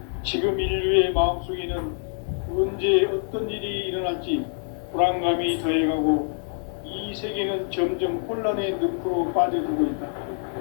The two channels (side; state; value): right; silent; 61 dB below the other